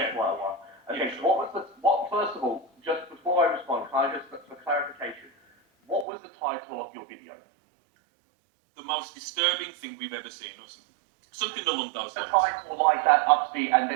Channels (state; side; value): drops out; left; at 6.1 s